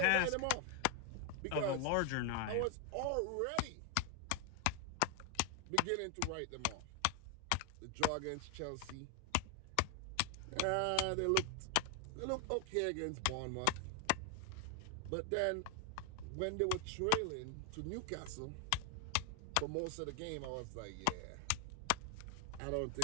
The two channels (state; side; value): different; both; correlation 0.01